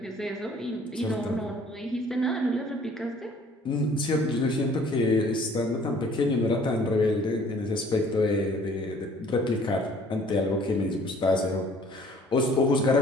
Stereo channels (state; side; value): normal; both; correlation 0.55